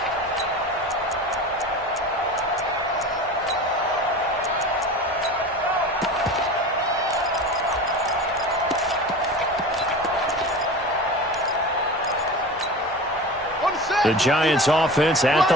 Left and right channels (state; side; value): normal; both; correlation 0.32